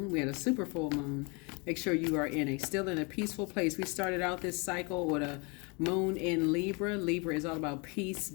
We had a super full moon. Make sure you are still in a peaceful place. We started out this cycle with a moon in Libra. Libra is all about peace,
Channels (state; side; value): quieter; right; 30.8 dB